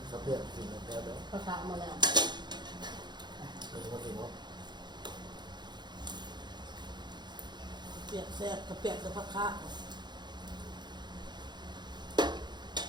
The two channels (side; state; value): left; late; 0.21 ms